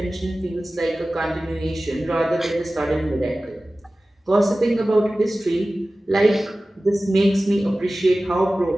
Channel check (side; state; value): both; normal; correlation 0.96